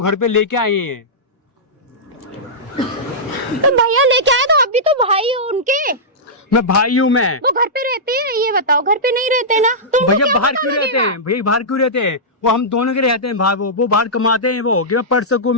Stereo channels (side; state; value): both; normal; correlation -0.13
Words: पे लेके आए हैं। तो भैया लेके आए तो आप भी तो भाई हो उनके। मैं भाई हूँ मैं। वो घर पे रहते हैं ये बताओ? घर पे नहीं रहते ना? तुमको भैया क्या बाहर पता क्यों रहते लगेगा? हैं? भैया बाहर क्यों रहते हैं? वो हम दोनों के रहते हैं भाई। वो बाहर कमाते हैं, वो कि मैं पढ़ सकूं,